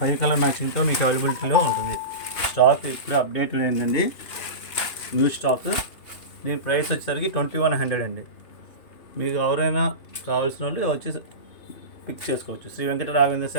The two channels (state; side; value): late; right; 3.0 ms